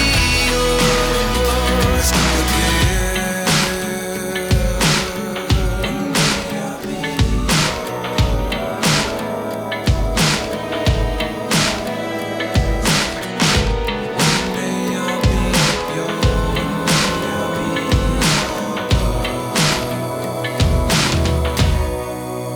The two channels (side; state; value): both; identical; correlation 1.00